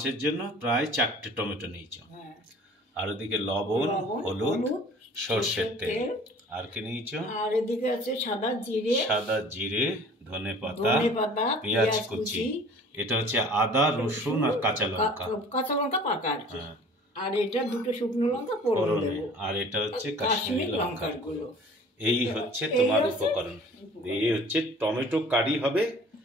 জন্য প্রায় 4টে টমেটো নিয়েছো। আর ওদিকে লবণ, হলুদ, সরষের তেল। আর কি নিয়েছো? আর এদিকে আছে সাদা জিরে, ধনেপাতা, পেঁয়াজ কুচি। এটা হচ্ছে আদা, রসুন আর কাঁচা লঙ্কা। পাকা আর কি। আর এটা দুটো শুকনো লঙ্কা ফোড়ন দেব। আর এটা হচ্ছে কাশ্মীরি লঙ্কার গুঁড়ো। এই হচ্ছে তোমার উপকরণ। এই হচ্ছে টমেটো কারি হবে,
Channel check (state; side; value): normal; both; correlation 0.48